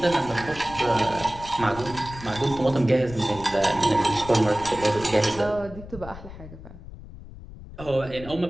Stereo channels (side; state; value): left; noise; rumble, 15 dB below the sound